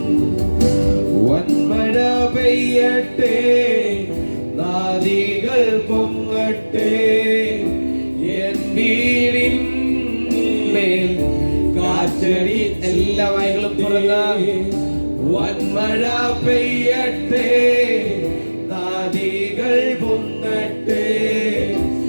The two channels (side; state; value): both; inverted; correlation -1.00